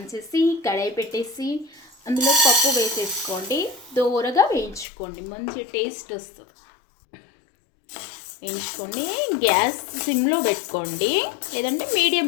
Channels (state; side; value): drops out; right; at 4.9 s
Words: చేసి కడాయి పెట్టేసి అందులో పప్పు వేసేసుకోండి. దోరగా వేయించుకోండి, మంచి టేస్ట్ వస్తుంది. వేయించుకొని గ్యాస్ సిమ్లో పెట్టుకోండి, లేదంటే మీడియం